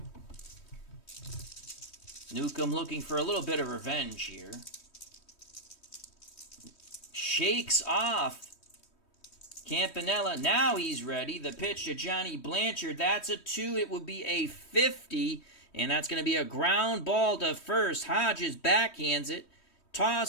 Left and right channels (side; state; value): right; late; 3.1 ms